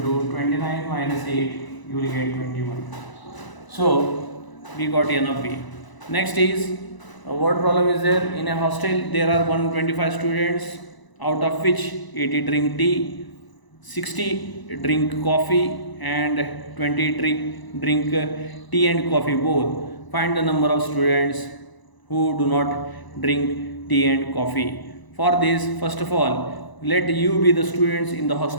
to 29 minus 8, you will get 21. So we got n of b. Next is what problem is there? In a hostel there are 125 students, out of which 80 drink tea, 60 drink coffee and 20 drink tea and coffee both. Find the number of students who do not drink tea and coffee. For this, first of all, let you be the students in the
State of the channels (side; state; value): right; late; 1.0 ms